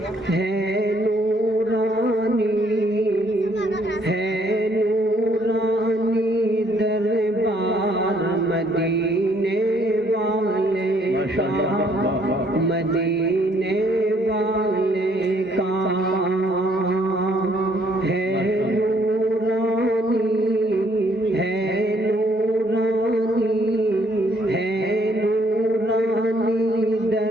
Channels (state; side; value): normal; both; correlation 0.66